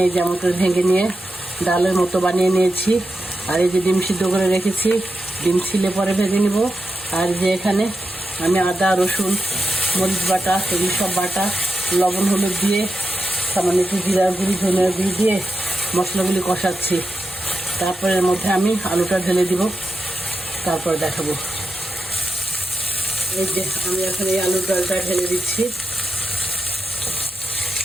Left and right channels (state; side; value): normal; both; correlation 0.88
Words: এই যে এমন করে ভেঙে নিয়ে ডালের মতো বানিয়ে নিয়েছি। আর এই যে ডিম সিদ্ধ করে রেখেছি, ডিম ছিলে পরে ভেজে নিব। আর যে এখানে আমি আদা রসুন মরিচ বাটা এগুলি সব বাটা লবণ হলুদ দিয়ে সামান্য একটু জিরা গুঁড়ি ধনিয়া গুঁড়ি দিয়ে মশলাগুলি কষাচ্ছি। তারপরে এর মধ্যে আমি আলুটা ঢেলে দিব, তারপর দেখাবো। এই যে আমি এখন এই আলুর ডালটা ঢেলে দিচ্ছি।